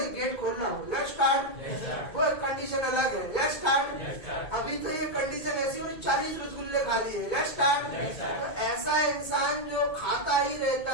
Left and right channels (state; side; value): late; right; 2.2 ms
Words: गेट खोलना हो। Let's start. वो एक कंडीशन अलग है। Let's start. अभी तो ये कंडीशन ऐसी हो 40 रसगुल्ले खा लिए। Let's start. तो ऐसा इंसान जो खाता ही